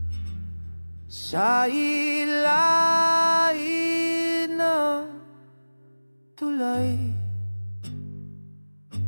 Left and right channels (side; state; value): both; inverted; correlation -1.00